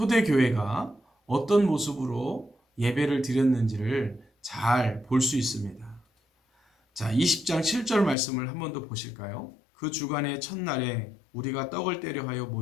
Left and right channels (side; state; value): right; drops out; at 8.2 s